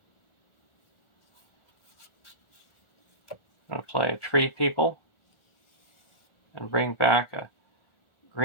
I'm going to play a Tree People and bring back a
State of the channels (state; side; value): late; right; 1.4 ms